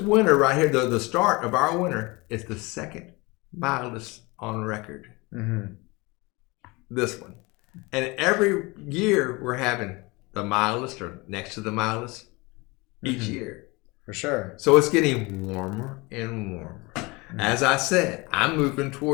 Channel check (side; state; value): right; quieter; 25.0 dB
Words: winter right here, the start of our winter, is the second mildest on record. Mm-hmm. This one. And every year we're having the mildest or next to the mildest each year. For sure. So it's getting warmer and warmer. Mm-hmm. As I said, I'm moving